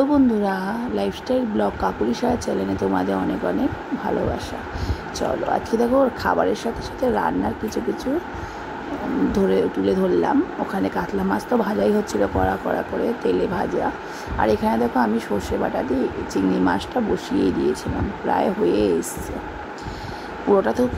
বন্ধুরা, লাইফস্টাইল ব্লগ কাকুলি সাহা চ্যানেলে তোমাদের অনেক অনেক ভালোবাসা। চলো আজকে দেখো খাবারের সাথে সাথে রান্নার কিছু কিছু তুলে ধরলাম। ওখানে কাতলা মাছ তো ভাজাই হচ্ছিলো কড়া কড়া করে তেলে ভাজা। আর এখানে দেখো আমি সর্ষে বাটা দিয়ে চিংড়ি মাছটা বসিয়ে দিয়েছিলাম, প্রায় হয়ে এসছে। পুরোটা তো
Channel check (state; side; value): identical; both; correlation 1.00